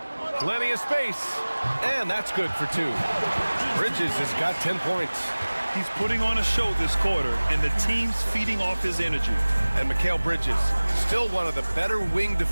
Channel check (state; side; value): inverted; both; correlation -1.00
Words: Plenty of space. And that's good for 2. Bridges has got 10 points. He's putting on a show this quarter, and the team's feeding off his energy. And Mikal Bridges, still one of the better wing